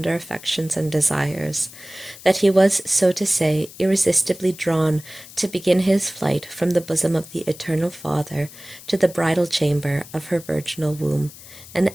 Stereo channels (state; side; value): noise; left; hiss, 18 dB below the sound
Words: affections and desires, that he was, so to say, irresistibly drawn to begin his flight from the bosom of the Eternal Father to the bridal chamber of her virginal womb, and